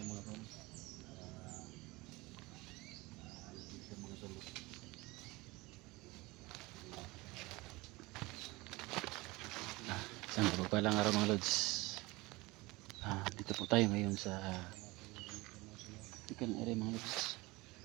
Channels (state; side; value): quieter; left; 22.2 dB